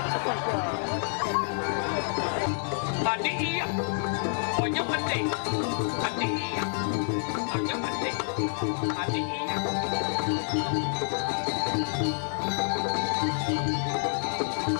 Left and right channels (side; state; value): right; silent; digital silence